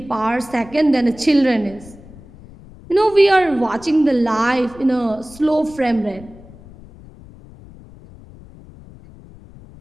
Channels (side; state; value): left; noise; rumble, 21 dB below the sound